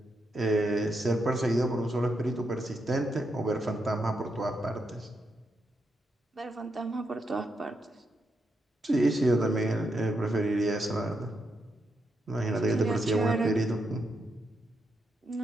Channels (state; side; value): normal; both; correlation 0.83